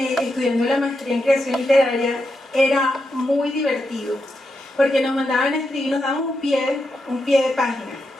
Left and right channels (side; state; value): both; normal; correlation 0.85